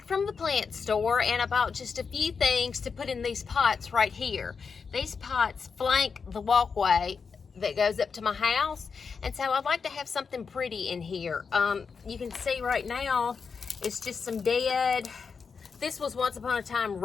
from the plant store and I bought just a few things to put in these pots right here. These pots flank the walkway that goes up to my house, and so I'd like to have something pretty in here. You can see right now it's just some dead, this was once upon a time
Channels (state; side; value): quieter; right; 5.5 dB